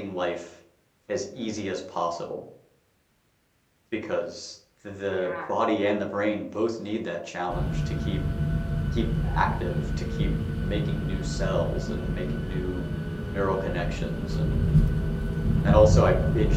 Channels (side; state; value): both; identical; correlation 1.00